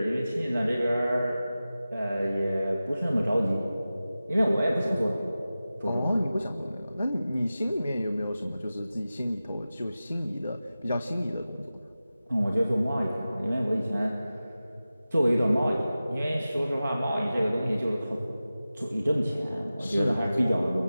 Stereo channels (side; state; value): both; inverted; correlation -0.95